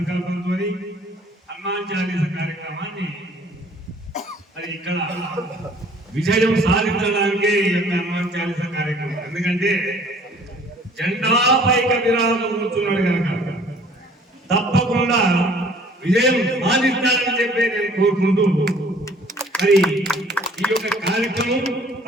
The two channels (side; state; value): both; normal; correlation 0.55